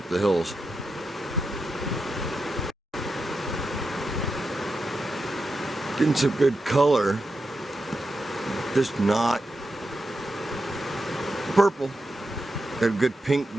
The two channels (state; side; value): normal; both; correlation 0.88